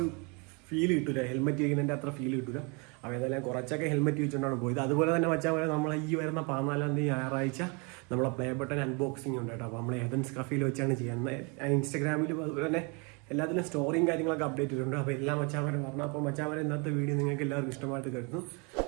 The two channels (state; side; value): quieter; left; 32.1 dB